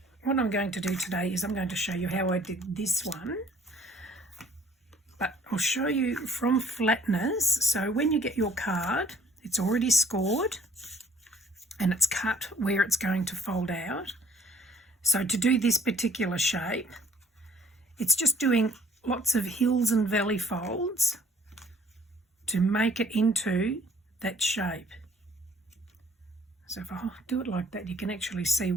what I'm going to do today is I'm going to show you how I did this one, but I'll show you from flatness. So when you get your card, it's already scored and it's cut where it's going to fold out. So to do this particular shape, it's just doing lots of hills and valley folds to make it into that shape. So if I do it like that, you can actually see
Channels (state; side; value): normal; both; correlation 0.57